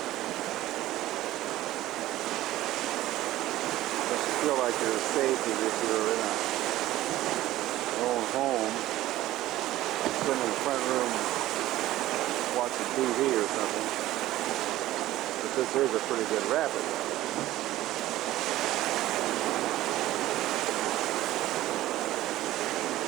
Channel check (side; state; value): left; quieter; 15.3 dB